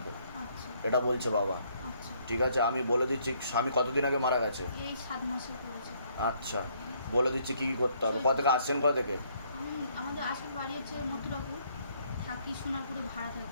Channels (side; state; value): both; inverted; correlation -0.67